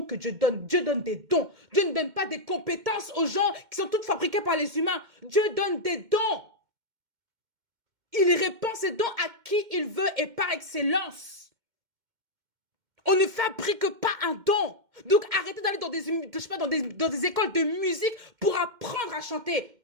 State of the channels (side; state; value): left; late; 2.1 ms